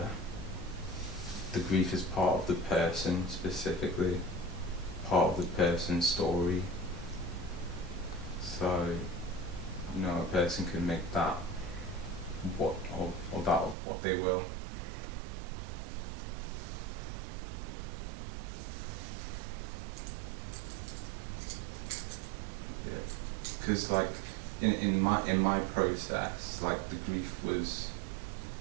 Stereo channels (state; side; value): drops out; left; at 13.8 s